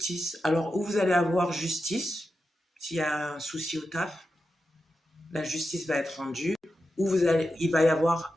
Alors, où vous allez avoir justice, s'il y a un souci au taf, la justice va être rendue. Ou il va y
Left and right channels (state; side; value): normal; both; correlation 0.89